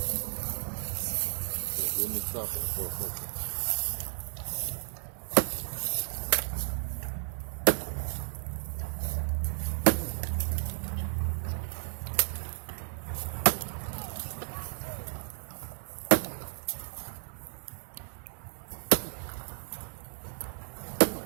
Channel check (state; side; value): silent; left; digital silence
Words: let me stop it for a second.